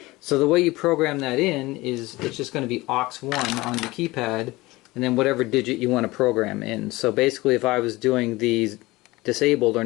So the way you program that in is it's just going to be aux1 on the keypad, and then whatever digit you want to program in. So basically if I was doing these disabled or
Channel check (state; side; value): quieter; right; 20.6 dB